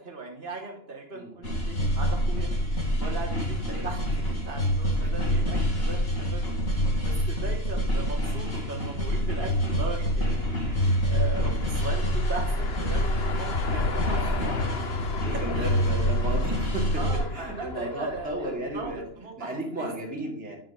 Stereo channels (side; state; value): right; late; 2.9 ms